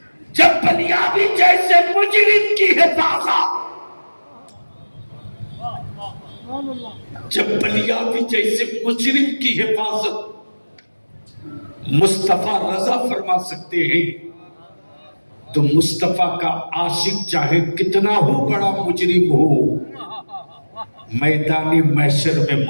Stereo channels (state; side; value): inverted; both; correlation -1.00